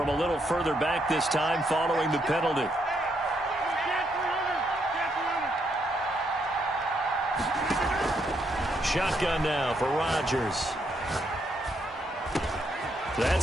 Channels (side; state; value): both; normal; correlation 0.76